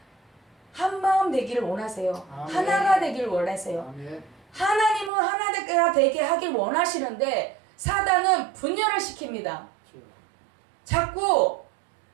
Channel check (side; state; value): left; drops out; at 5.1 s